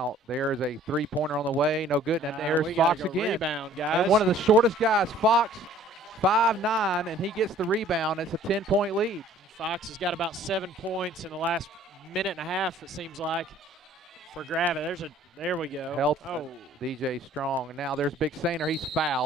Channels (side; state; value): both; normal; correlation 0.54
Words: there's a three-pointer on the way. No good. And there's Fox again. Rebound, guys. And one of the shortest guys, Fox, 5'9", and he gets the rebound. It's a 10-point lead. Fox has got about 7 points in the last minute and a half, it seems like, for Gravette. There we go. Help DJ Strong. And now there's Big Sainer. He's